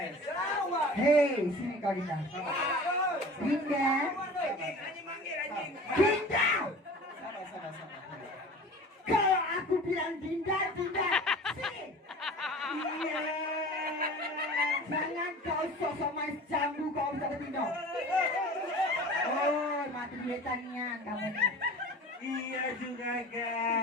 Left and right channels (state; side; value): normal; both; correlation 0.40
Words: Lawan. Hei, sini kau Dinda. Dinda. Anjing manggil anjing. Dinda. Sabar. Kalau aku bilang Dinda, Dinda. Sini. Iya. Jangan kau sosok main jambu kau bisa bertindak. Oh, mati duitanian kamu nih. Iya juga